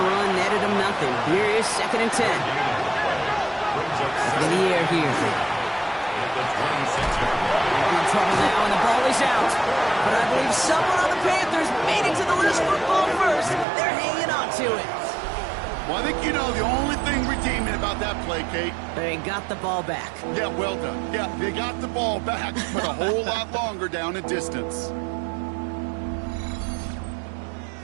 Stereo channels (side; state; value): left; drops out; at 13.7 s